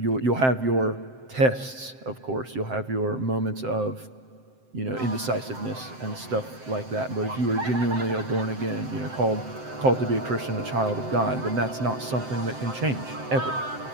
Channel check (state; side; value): late; left; 7.8 ms